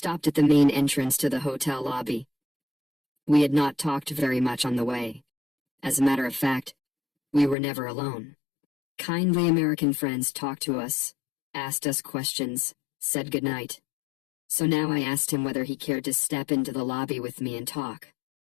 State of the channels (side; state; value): right; drops out; at 7.6 s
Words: at the main entrance to the hotel lobby. We had not talked very much on the way. As a matter of fact, we were never alone. Kindly American friends talked to us, asked us questions, said goodnight. So now I asked him whether he cared to step into the lobby with me and talk.